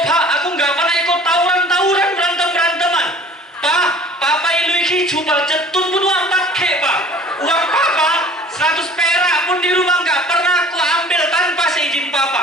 aku nggak pernah ikut tawuran, berantem-beranteman. Pak, Papa ilu iki jubal jetun pun wampat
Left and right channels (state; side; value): normal; both; correlation 0.48